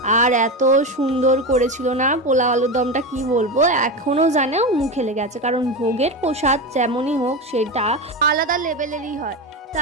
আর এত সুন্দর করেছিল না পোলাও আলুর দমটা, কি বলবো, এখনও জানে মুখে লেগে আছে। কারণ ভোগের প্রসাদ যেমনই হোক সেটা আলাদা লেভেলেরই হয়।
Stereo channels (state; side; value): normal; both; correlation 0.19